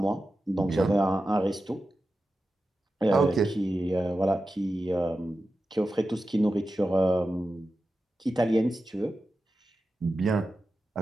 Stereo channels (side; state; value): both; normal; correlation 0.92